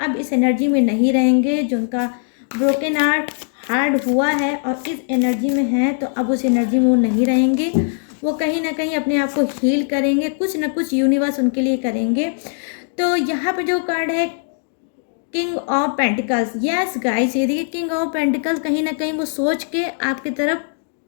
अब इस एनर्जी में नहीं रहेंगे, जो उनका ब्रोकन हार्ट हुआ है और इस एनर्जी में है, तो अब उस एनर्जी में वो नहीं रहेंगे। वो कहीं ना कहीं अपने आप को हील करेंगे, कुछ ना कुछ यूनिवर्स उनके लिए करेंगे। तो यहाँ पे जो कार्ड है king of pentacles, yes guys, ये देखिए किंग ऑफ पेंटिकल्स, कहीं ना कहीं वो सोच के आपकी तरफ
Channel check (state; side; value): silent; right; 62 dB below the other